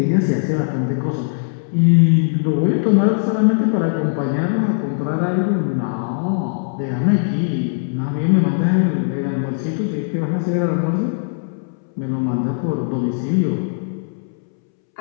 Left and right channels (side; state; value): right; silent; 66 dB below the other